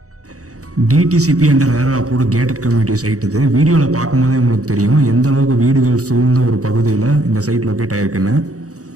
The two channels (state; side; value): late; left; 0.66 ms